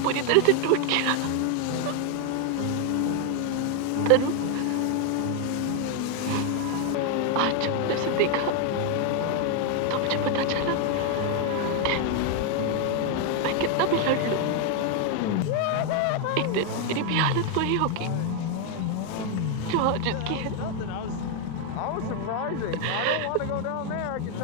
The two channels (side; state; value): both; different; correlation 0.01